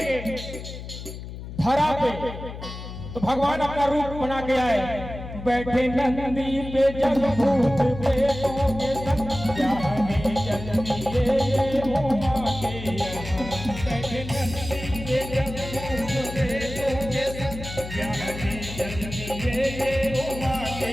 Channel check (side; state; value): left; noise; hum, 10 dB below the sound